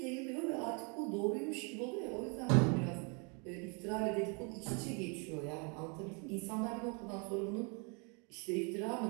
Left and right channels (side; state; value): left; quieter; 34.2 dB